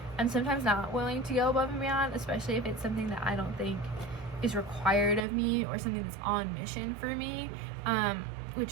I'm sometimes not willing to go above and beyond, especially if it's something that I don't think is required of me or something that's on mission for me,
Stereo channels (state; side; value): drops out; left; at 5.2 s